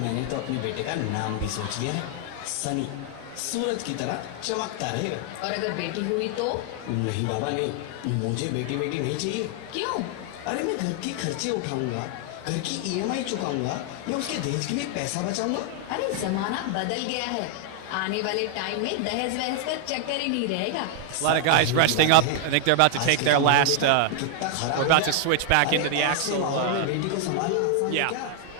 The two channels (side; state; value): both; different; correlation 0.00